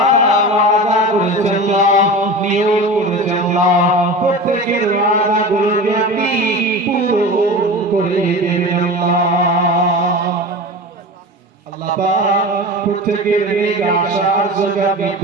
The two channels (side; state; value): both; normal; correlation 0.31